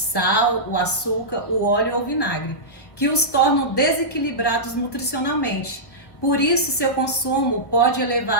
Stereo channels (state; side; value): late; right; 1.5 ms